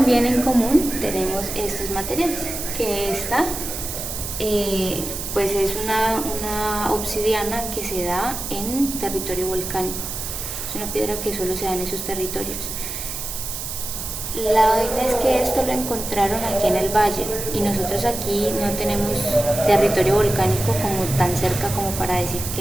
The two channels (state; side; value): noise; right; hiss, 6 dB below the sound